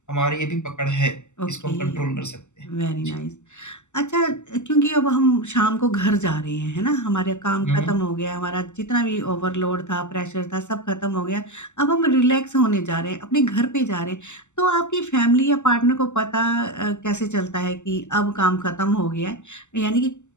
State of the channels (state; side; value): late; right; 0.84 ms